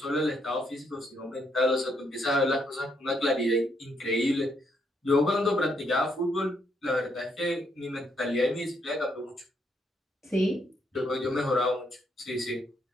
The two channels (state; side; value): normal; both; correlation 0.75